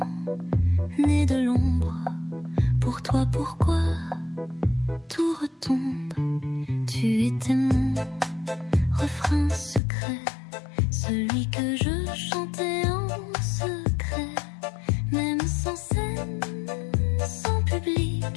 née de l'ombre. Pour toi, pourquoi tout retombe? Tu étais mon refrain secret, celui que je chantais en secret. Même sans scène, sans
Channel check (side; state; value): right; drops out; at 9.8 s